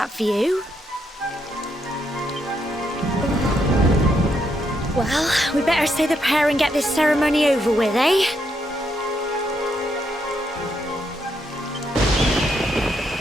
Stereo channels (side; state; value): both; normal; correlation 0.78